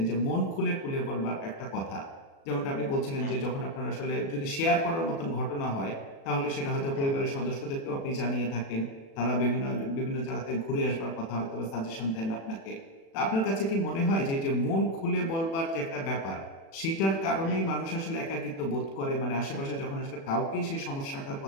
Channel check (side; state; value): right; late; 36 ms